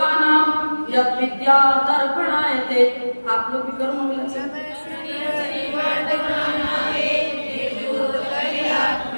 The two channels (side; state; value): both; inverted; correlation -1.00